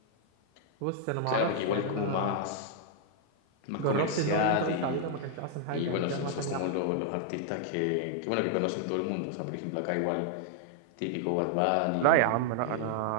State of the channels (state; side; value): different; both; correlation -0.01